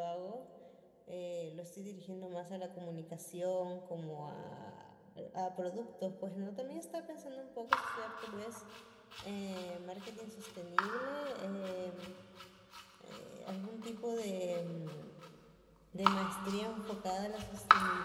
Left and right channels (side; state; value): both; identical; correlation 1.00